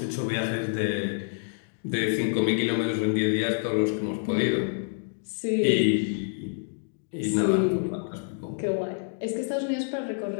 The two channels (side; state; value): right; silent; digital silence